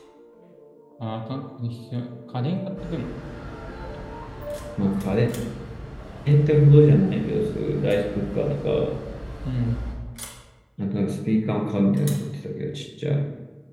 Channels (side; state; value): both; identical; correlation 1.00